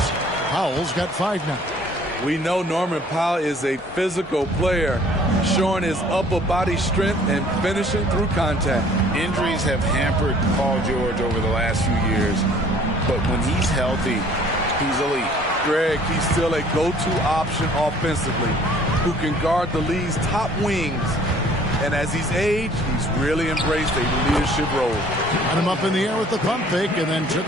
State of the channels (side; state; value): both; normal; correlation 0.55